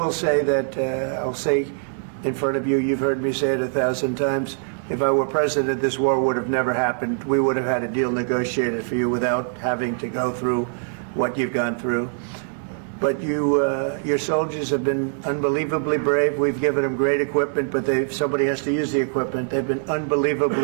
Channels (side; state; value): left; silent; 63 dB below the other